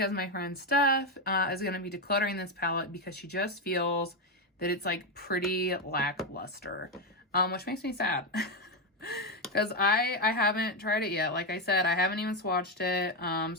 my friend Steph is going to be decluttering this palette because she just feels that it's like pretty lackluster, which makes me sad. Because I haven't tried it yet. Like I said, I haven't even swatched it.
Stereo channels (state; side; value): normal; both; correlation 0.08